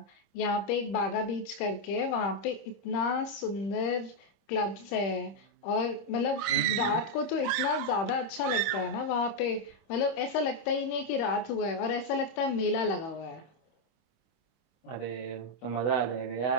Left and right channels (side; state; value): right; late; 26 ms